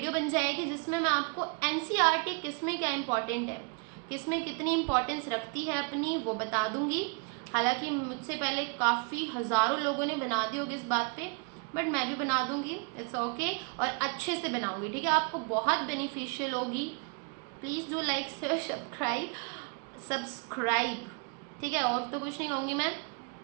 बन जाएगी जिसमें मैं आपको एनसीईआरटी किस में क्या इम्पॉर्टेंट है, किस में कितनी इम्पोर्टेंस रखती है अपनी, वो बता दूंगी। हालांकि मुझसे पहले काफ़ी हज़ारों लोगों ने बना दी होगी इस बात पे, बट मैं भी बना दूंगी, इट्स ओके, और अच्छे से बनाऊंगी, ठीक है। आपको बहुत बेनिफिशियल होगी। Please do like share subscribe, ठीक है। और तो कुछ नहीं कहूँगी मैं।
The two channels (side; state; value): left; quieter; 35.1 dB